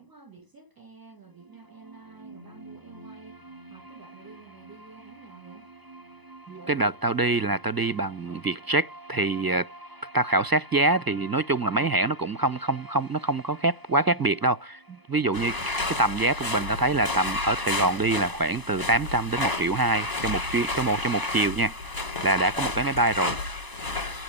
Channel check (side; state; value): left; late; 1.0 ms